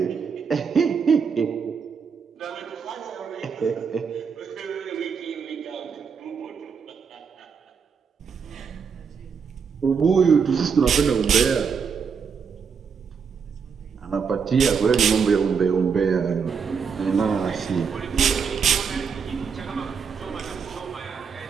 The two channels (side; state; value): left; quieter; 6.1 dB